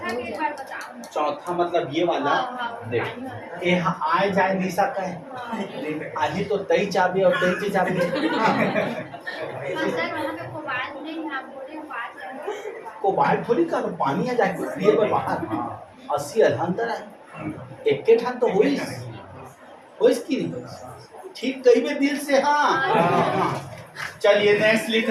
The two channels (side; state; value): both; identical; correlation 1.00